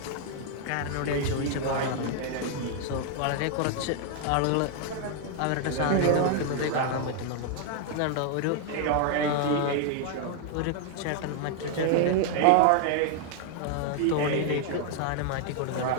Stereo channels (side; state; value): both; different; correlation 0.00